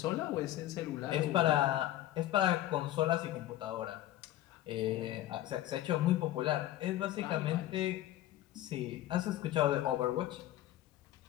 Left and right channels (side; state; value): right; quieter; 14.0 dB